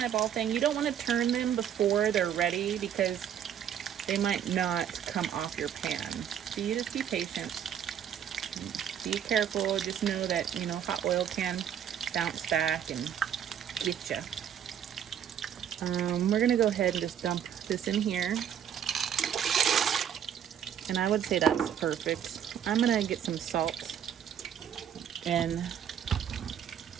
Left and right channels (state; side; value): quieter; left; 9.1 dB